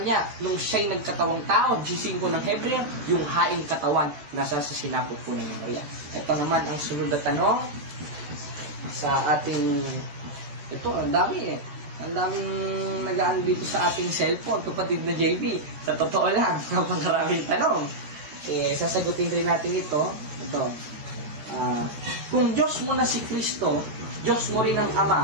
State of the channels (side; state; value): left; late; 14 ms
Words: nung siya'y nagkatawang tao, G5 ng Hebreo, yung haing katawan nasa sa sinapot po ng Maria. Ito naman ang sunod na tanong sa ating, ito, ang dami Ang daming nagaan dito sa ating cellphone, kapatid na JB. Sa totoo lang, napakaraming tanong. Sasagutin rin natin ito. Kung Diyos mo na si Kristo, Diyos mo rin ang